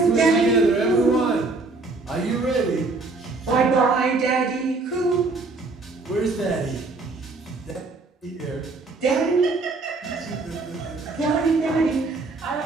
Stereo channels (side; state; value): left; quieter; 3.6 dB